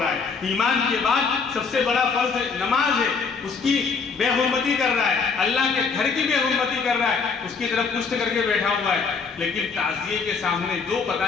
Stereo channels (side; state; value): right; quieter; 5.2 dB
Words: ہے. ایمان کے بعد سب سے بڑا فرض نماز ہے، اس کی بے حرمتی کر رہا ہے، اللہ کے گھر کی بے حرمتی کر رہا ہے، اس کی طرف پشت کر کے بیٹھا ہوا ہے. لیکن تعزیے کے سامنے جو